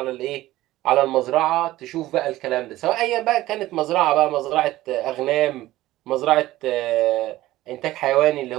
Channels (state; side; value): quieter; left; 16.3 dB